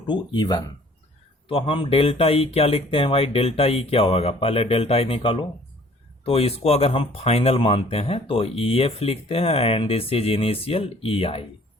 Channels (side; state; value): both; normal; correlation 0.55